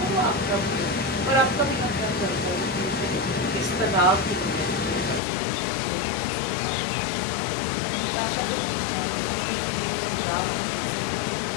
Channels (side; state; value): right; drops out; at 5.2 s